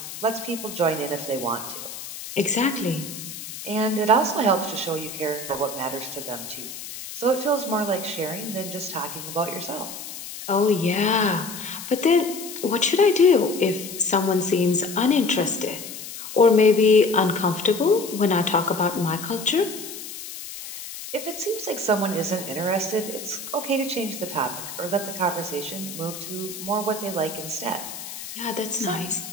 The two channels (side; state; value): left; noise; hiss, 10 dB below the sound